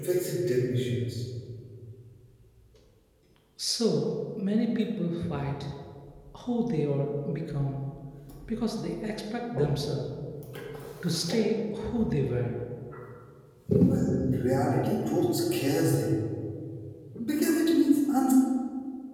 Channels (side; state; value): both; identical; correlation 1.00